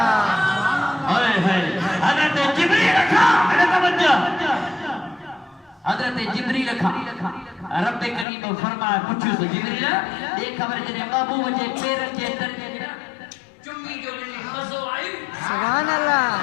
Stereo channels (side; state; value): right; drops out; at 8.2 s